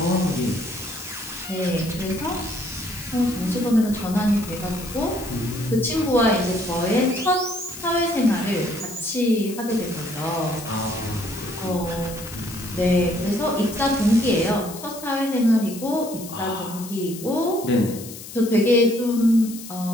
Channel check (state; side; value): noise; left; hiss, 13 dB below the sound